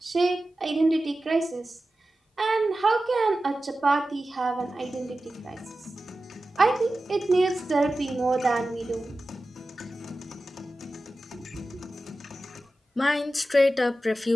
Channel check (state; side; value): normal; both; correlation 0.94